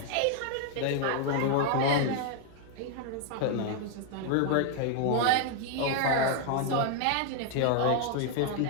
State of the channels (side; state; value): both; different; correlation 0.00